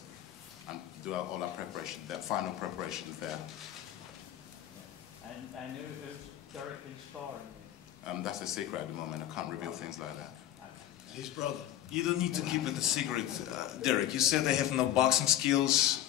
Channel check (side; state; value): right; quieter; 12.2 dB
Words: and do all our preparation, that final preparations there. And who's Derek been sparring with? That's a secret at the moment. I can't reveal things like that. His brother. You don't need to keep it a secret, Derek. You said they have no boxing